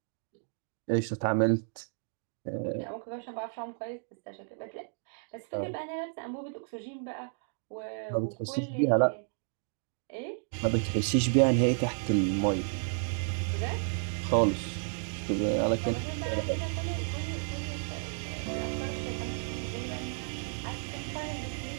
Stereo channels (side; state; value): left; silent; digital silence